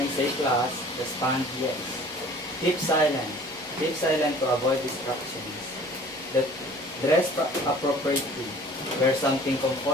I say class, respond yes. Keep silent. Keep silent to avoid distractions. Dress appropriately. Wear something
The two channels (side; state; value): both; normal; correlation 0.49